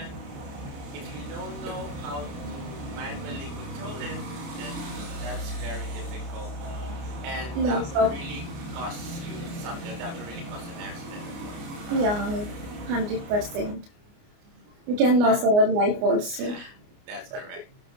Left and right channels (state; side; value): late; left; 29 ms